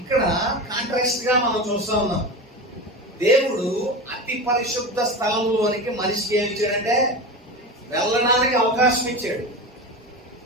కాంట్రాస్ట్ గా మనం చూస్తా ఉన్నాం. దేవుడు అతి పరిశుద్ధ స్థలంలోనికి మనిషికి ఏమి ఇచ్చాడంటే వెళ్ళడానికి అవకాశం ఇచ్చాడు.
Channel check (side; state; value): both; normal; correlation 0.25